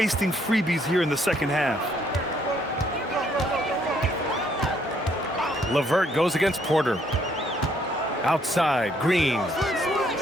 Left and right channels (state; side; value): normal; both; correlation 0.68